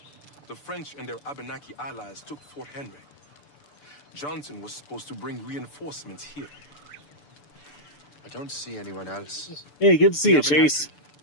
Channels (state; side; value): late; right; 6.9 ms